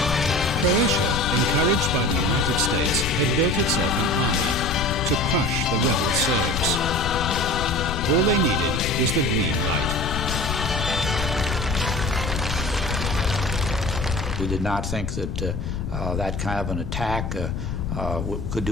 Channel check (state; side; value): noise; left; rumble, 3 dB below the sound